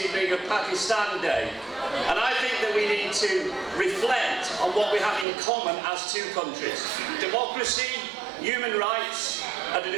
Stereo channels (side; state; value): left; drops out; at 5.2 s